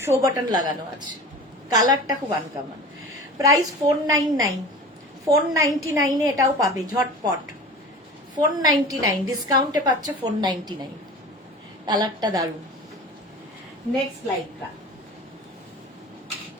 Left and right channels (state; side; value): normal; both; correlation 0.37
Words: শো বাটন লাগানো আছে, কালারটা খুব আনকমন। প্রাইস 499, 499 এটাও পাবে ঝটপট, 499 ডিসকাউন্টে পাচ্ছ 499। কালারটা দারুণ। নেক্সট লাইক্রা,